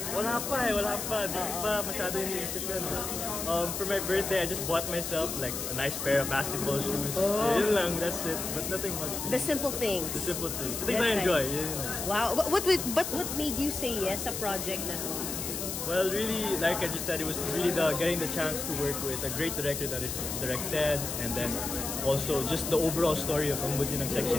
Wala pa. Di pa masyado iniisip yun. For my birthday, I just bought myself like a nice pair of basketball shoes. Yun lang, that's it. But nothing much. The simple things. The simple things. Things I enjoy. Wow. But what made you say yes sa project na to? Well, really, like I just said, it was really getting the chance to work with a great director that is directed, and then also just the overall story of Ang Buti ng Section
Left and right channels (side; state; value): left; noise; hiss, 4 dB below the sound